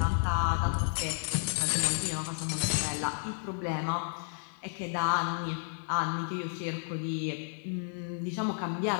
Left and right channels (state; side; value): silent; right; digital silence